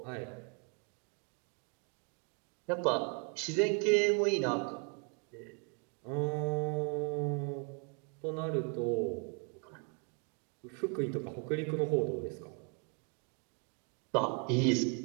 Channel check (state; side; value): quieter; left; 36.0 dB